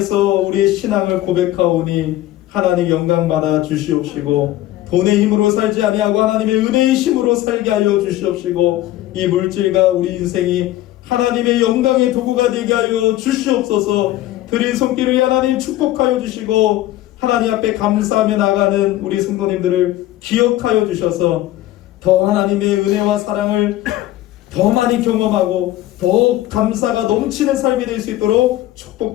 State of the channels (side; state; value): right; quieter; 15.0 dB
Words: 우리의 신앙을 고백하오니 하나님 영광 받아 주시옵시고 돈의 힘으로 살지 아니하고 하나님의 은혜의 힘으로 살게 하여 주시옵시고 이 물질과 우리 인생이 하나님의 영광의 도구가 되게 하여 주시옵소서. 드린 손길을 하나님 축복하여 주시고 하나님 앞에 감사하며 나가는 우리 성도님들을 기억하여 주셔서 더 하나님의 은혜와 사랑을 더 많이 경험하고 더 감사가 넘치는 삶이 될 수 있도록